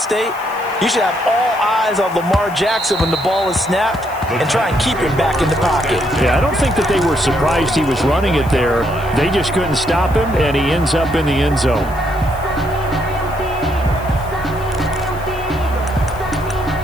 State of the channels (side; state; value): left; noise; hiss, 22 dB below the sound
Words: you should have all eyes on Lamar Jackson when the ball is snapped and try and keep him back in the pocket. Yeah, I don't think that they were surprised he was running it there. They just couldn't stop him, and he ends up in the end zone.